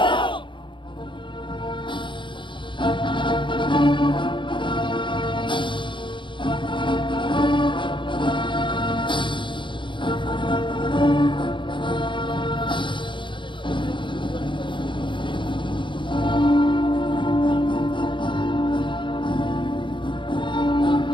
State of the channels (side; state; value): right; late; 0.23 ms